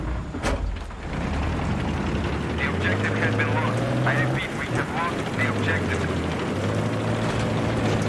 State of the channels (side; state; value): both; identical; correlation 1.00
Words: The objective has been lost. I repeat, we have lost the objective.